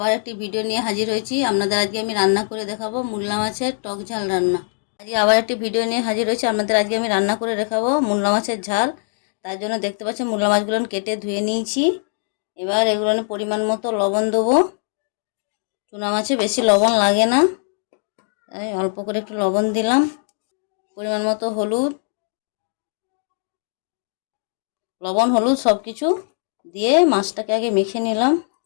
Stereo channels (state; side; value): silent; right; 65 dB below the other